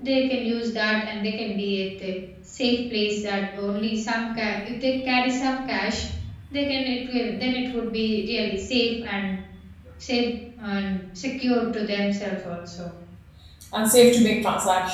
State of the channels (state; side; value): identical; both; correlation 1.00